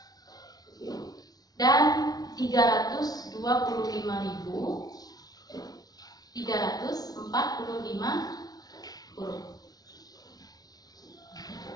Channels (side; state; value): right; late; 0.19 ms